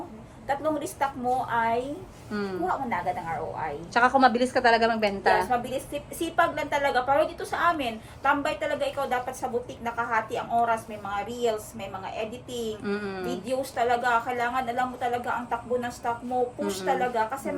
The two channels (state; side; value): identical; both; correlation 1.00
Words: tatlong restock mo ay Mm. kuha mo na agad ang ROI. Tsaka kung mabilis ka talaga magbenta. Yes, mabilis. Sipag lang talaga. Pero dito sa amin, tambay talaga ikaw dapat sa boutique, nakahati ang oras. May mga reels, may mga editing, videos talaga. Kailangan alam mo talaga ang takbo ng stock mo. Push talaga. Kasi